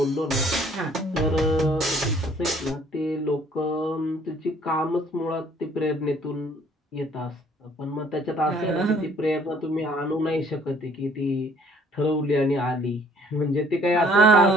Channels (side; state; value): both; normal; correlation 0.59